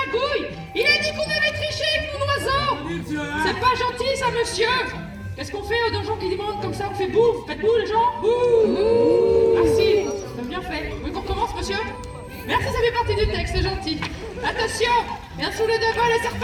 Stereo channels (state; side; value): identical; both; correlation 1.00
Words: Il a dit qu'on avait triché avec mon oiseau. C'est pas gentil, ça, monsieur. Qu'est-ce qu'on fait aux gens qui demandent comme ça? On fait bouffe. Faites bouffe, les gens. Bouh. Merci, c'est bien fait. Oui, qu'on commence, monsieur? Merci, ça fait partie du texte, c'est gentil. Attention, bien sous les deux balles et c'est